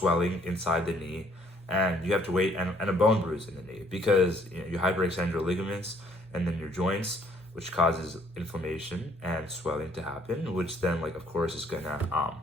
inside the knee, and you have to wait and a bone bruise in the knee because you hyperextend your ligaments and then your joints, which causes inflammation and swelling to happen, which then like of course is gonna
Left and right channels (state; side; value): normal; both; correlation 0.63